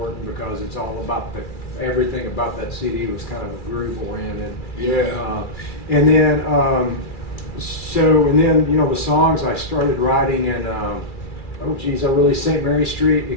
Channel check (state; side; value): late; right; 2.3 ms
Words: because it's all about everything about that CD was kind of groove oriented. Yeah. And then the songs I started writing in I released St. Mary Street.